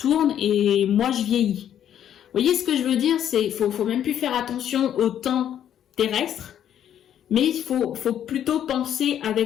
et moi je vieillis. Vous voyez ce que je veux dire? C'est faut même plus faire attention au temps terrestre, mais il faut plutôt penser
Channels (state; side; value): quieter; right; 10.1 dB